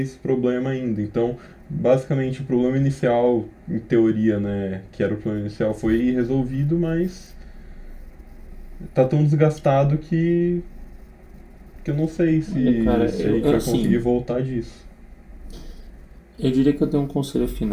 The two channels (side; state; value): both; identical; correlation 1.00